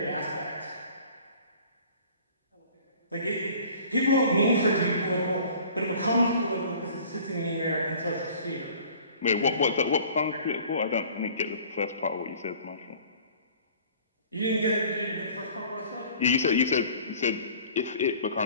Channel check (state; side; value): inverted; both; correlation -0.49